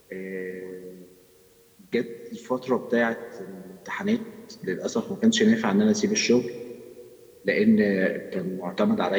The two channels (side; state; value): both; identical; correlation 1.00